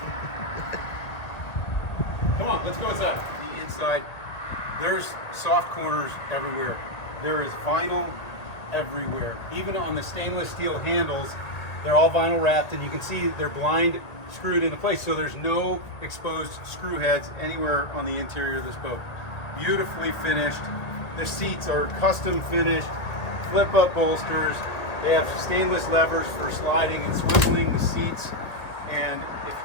Come on, let's go inside. The inside, there's soft corners everywhere. There is vinyl everywhere. Even on the stainless steel handles, they're all vinyl wrapped, and you can see they're blind screwed into place, so there's no exposed screw heads anywhere on the interior of this boat. Beautifully finished. The seats are custom finished, flip up bolsters. They have stainless levers for sliding and swiveling the seats, and if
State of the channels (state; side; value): late; right; 1.8 ms